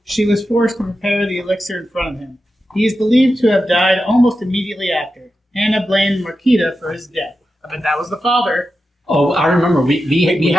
she was forced to prepare the elixir in front of him. He is believed to have died almost immediately after. Hannah blamed Marquita for his death. I bet that was the father. Oh, I remember. We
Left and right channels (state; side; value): normal; both; correlation 0.90